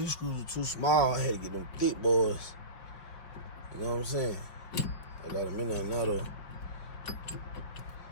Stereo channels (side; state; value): right; late; 5.1 ms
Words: screws were too small. I had to get them thick boys. You know what I'm saying? I got them in there now though.